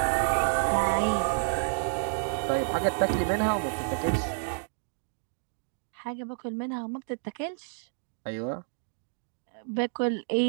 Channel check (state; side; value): silent; left; digital silence